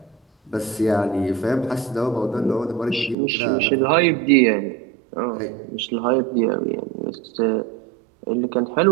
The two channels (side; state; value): left; drops out; at 3.2 s